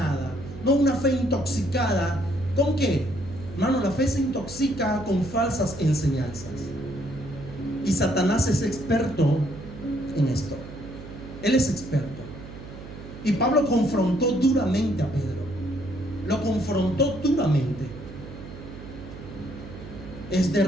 no una fe intoxicada. ¿Con qué? Hermano, la fe se intoxica con falsas enseñanzas. Y Satanás es experto en esto. Él es experto. Y Pablo confrontó duramente a Pedro. Lo confrontó duramente. Es de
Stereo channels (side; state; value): right; noise; hum, 14 dB below the sound